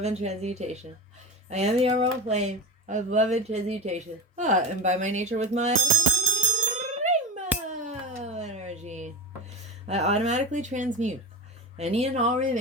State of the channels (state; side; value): normal; both; correlation 0.23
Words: and transmutation. I am the emerald flame of love and transmutation. And by my nature with my rainbow energy, I automatically transmute any and all